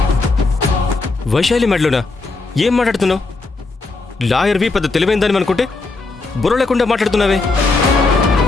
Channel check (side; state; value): right; quieter; 3.6 dB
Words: వైశాలి మెడలోనా? ఏం మాట్లాడుతున్నావు? లాయర్వి పెద్ద తెలివైందని అనుకుంటే బుర్ర లేకుండా మాట్లాడుతున్నావే.